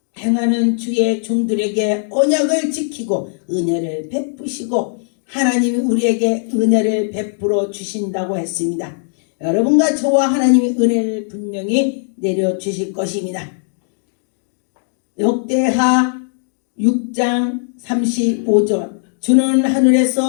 행하는 주의 종들에게 언약을 지키고 은혜를 베푸시고 하나님이 우리에게 은혜를 베풀어 주신다고 했습니다. 여러분과 저와 하나님이 은혜를 분명히 내려주실 것입니다. 역대하 6장 35절 주는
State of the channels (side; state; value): right; silent; digital silence